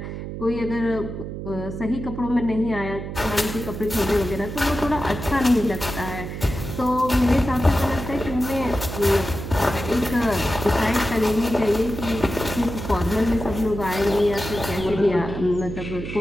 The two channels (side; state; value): right; noise; hum, 7 dB below the sound